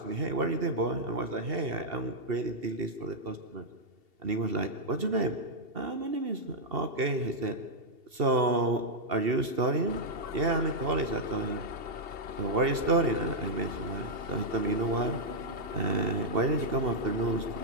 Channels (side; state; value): left; late; 2.7 ms